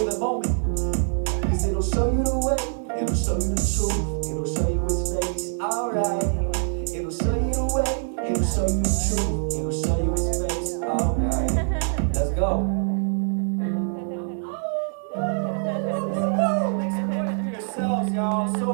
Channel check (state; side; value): silent; left; 62 dB below the other